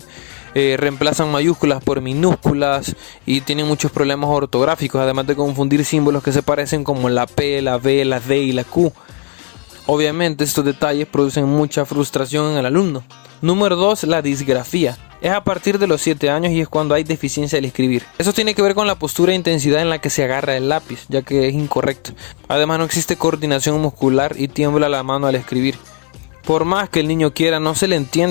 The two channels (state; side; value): quieter; right; 34.8 dB